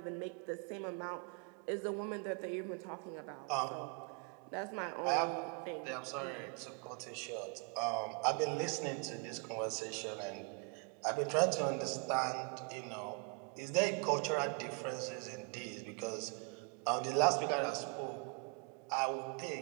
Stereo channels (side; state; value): left; quieter; 33.2 dB